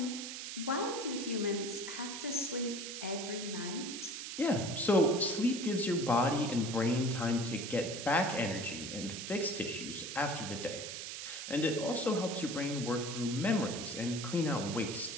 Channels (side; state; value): right; noise; hiss, 7 dB below the sound